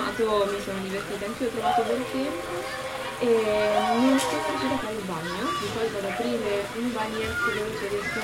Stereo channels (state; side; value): noise; left; rumble, 24 dB below the sound